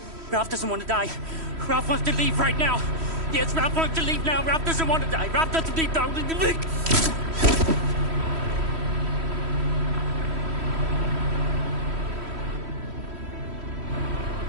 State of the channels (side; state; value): left; late; 3.1 ms